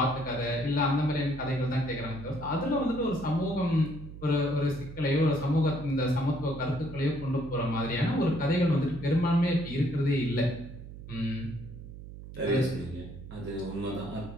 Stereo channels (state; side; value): noise; right; hum, 13 dB below the sound